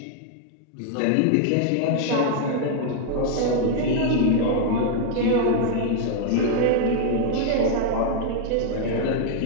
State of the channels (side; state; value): both; different; correlation 0.00